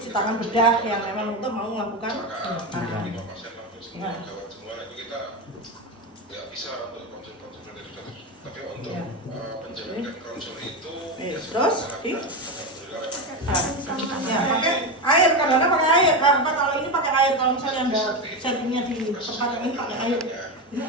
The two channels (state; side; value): normal; both; correlation 0.15